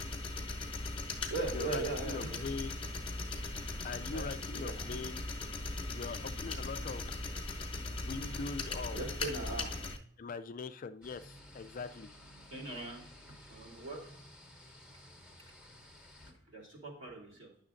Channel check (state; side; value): normal; both; correlation 0.35